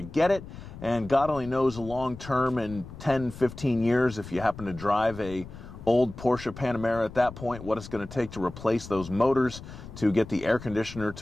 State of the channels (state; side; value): noise; left; rumble, 14 dB below the sound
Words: get it. And God only knows long term, in 10, 15 years, if you happen to drive a old Porsche Panamera at that point, what it's going to take to replace those motors to get the air conditioner